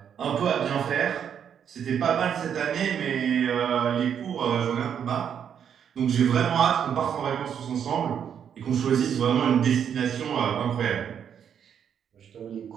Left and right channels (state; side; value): quieter; left; 8.3 dB